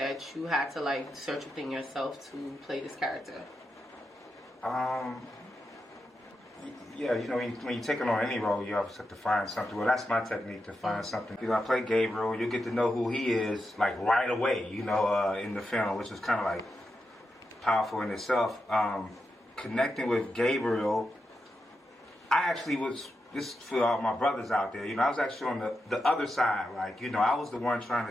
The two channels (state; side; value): normal; both; correlation 0.87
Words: you had to like search within yourself to play this character? Yeah, you know, when you're taking on any role, you always have to find something. Well, that's my technique, to find something. You know, I play Gabriel. You get to know who he is, like, right away, you know, in the film, which is kind of, like, powerful in itself. Connecting with Gabriel, I actually was, this for all my brothers out there, you know, I was actually on the other side. Like, you know, I was the one